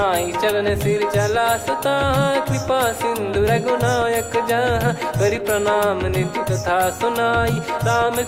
चरण सिर चला सता, कृपा सिंधु रघुनायक जहाँ। करि प्रणाम निधि कथा सुनाई, राम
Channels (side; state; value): both; identical; correlation 1.00